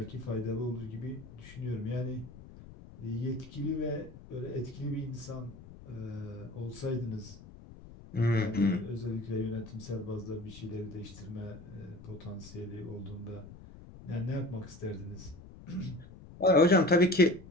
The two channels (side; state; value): left; noise; rumble, 17 dB below the sound